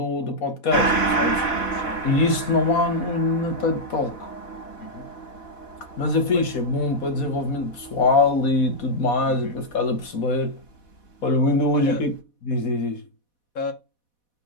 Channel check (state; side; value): late; right; 4.1 ms